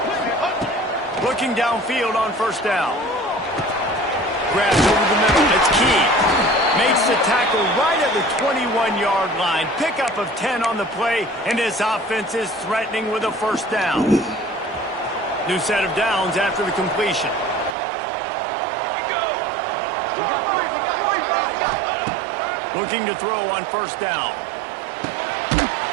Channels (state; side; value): drops out; left; at 17.8 s